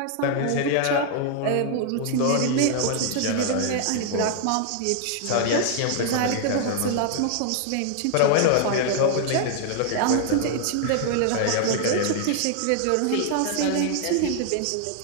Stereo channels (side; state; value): both; different; correlation 0.00